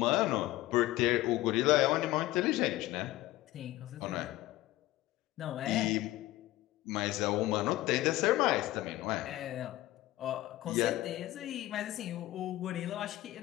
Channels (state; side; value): quieter; right; 16.5 dB